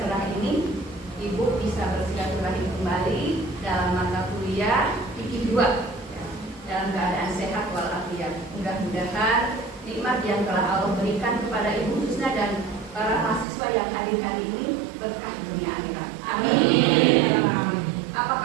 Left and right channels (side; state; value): left; drops out; at 13.5 s